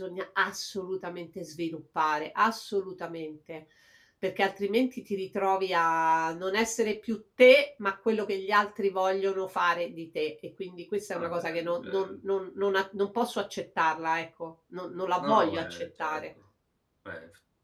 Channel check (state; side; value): identical; both; correlation 1.00